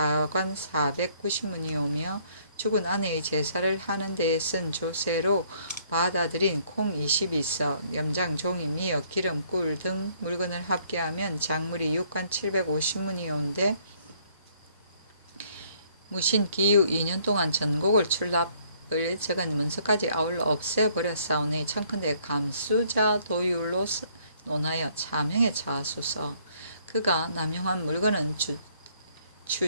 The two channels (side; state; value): both; inverted; correlation -0.64